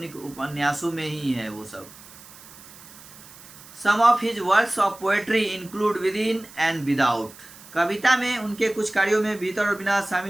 उपन्यासों में ही है वो सब। Some of his works of poetry include within and without, कविता में उनके कुछ कार्यों में भीतर और बिना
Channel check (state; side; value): noise; right; hiss, 20 dB below the sound